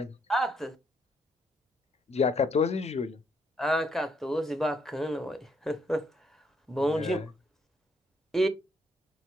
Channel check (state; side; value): normal; both; correlation 0.72